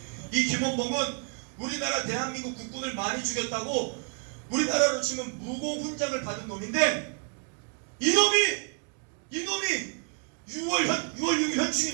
이 김원봉은 우리나라 대한민국 국군을 많이 죽였다고 우리나라로 치면 무공훈장을 받은 놈인데 이놈이 6월 6일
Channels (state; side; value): quieter; left; 38.4 dB